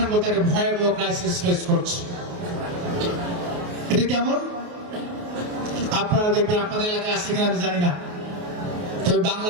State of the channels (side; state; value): left; late; 28 ms